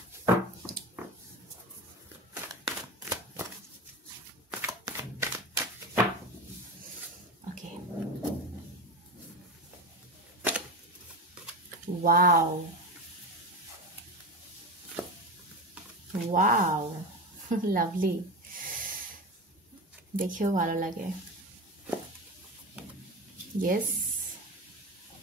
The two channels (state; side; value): normal; both; correlation 0.24